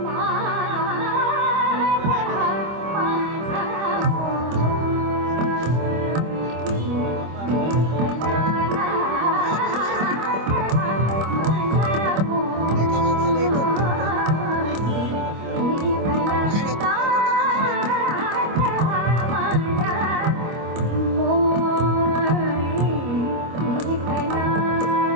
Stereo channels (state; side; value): late; left; 25 ms